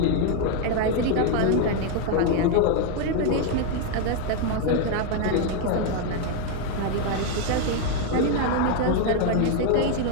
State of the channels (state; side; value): different; both; correlation 0.01